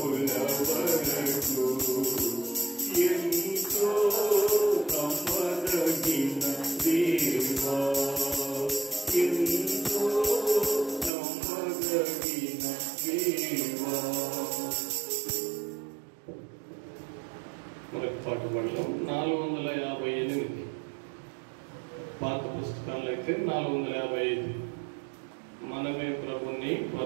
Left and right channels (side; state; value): left; drops out; at 11.1 s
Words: వరకు ఎంతో నమ్మదగిన దేవా, ఎంతో నమ్మదగిన దేవా. మనకు పాట పడడం 458. పాత పుస్తకాల్లో అయితే 455. మనమే ప్రభుని